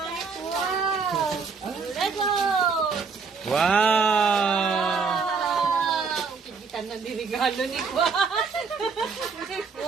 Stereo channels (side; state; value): left; quieter; 5.0 dB